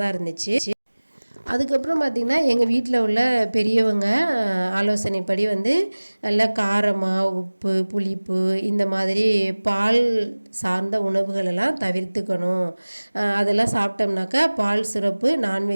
இருந்துச்சு. அதுக்கப்புறம் பார்த்திங்கன்னா எங்கள் வீட்டில் உள்ள பெரியவங்க ஆலோசனைப்படி வந்து நல்லா காரமாக உப்பு புளிப்பு இந்த மாதிரி பால் சார்ந்த உணவுகளெல்லாம் தவிர்த்துக்கணும். அதெல்லாம் சாப்பிட்டோம்னாக்கா பால் சிறப்பு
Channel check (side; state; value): both; inverted; correlation -1.00